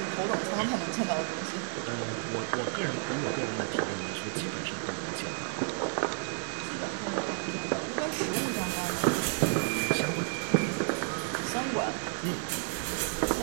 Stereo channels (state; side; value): silent; left; 57 dB below the other